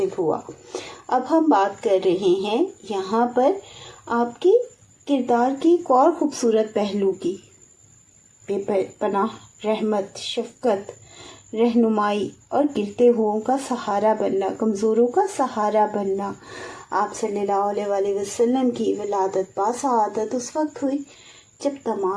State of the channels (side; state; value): both; identical; correlation 1.00